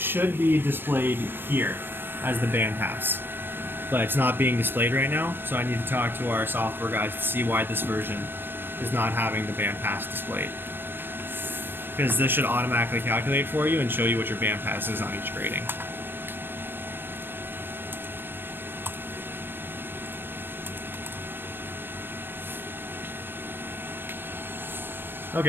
be displayed here as the band pass, but it's not being displayed right now, so I need to talk to our software guys to see why this version is not having the band pass displayed. Because this should automatically calculate for you and show you what your band pass is on each grading.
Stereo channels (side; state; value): left; late; 0.10 ms